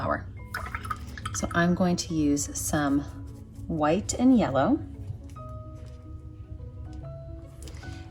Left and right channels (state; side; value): identical; both; correlation 1.00